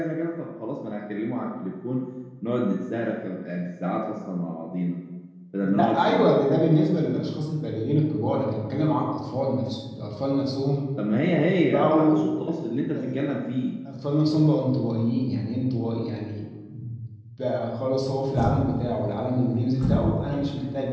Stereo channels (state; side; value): identical; both; correlation 1.00